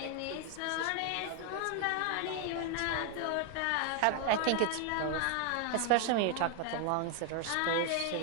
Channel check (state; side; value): different; both; correlation 0.00